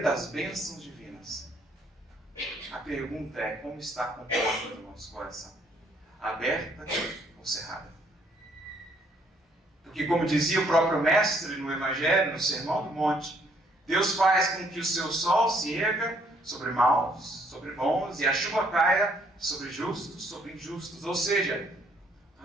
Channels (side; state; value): both; normal; correlation 0.67